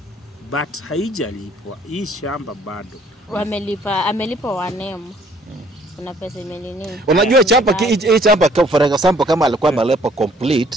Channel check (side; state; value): both; normal; correlation 0.60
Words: But haijalipwa. Hii shamba bado. Amelipa wanemu. Kuna pesa imenini. Unajua hii chamba for example kama alikuwa amelipa